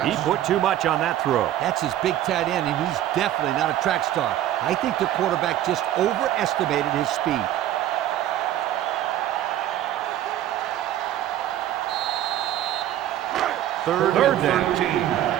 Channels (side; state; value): left; quieter; 12.4 dB